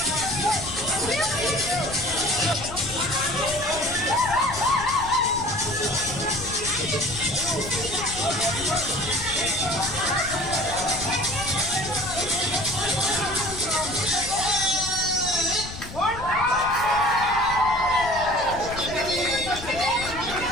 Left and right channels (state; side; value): noise; left; rumble, 12 dB below the sound